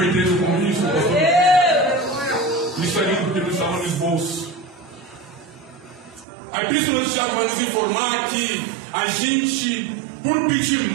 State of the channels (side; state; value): left; drops out; at 6.2 s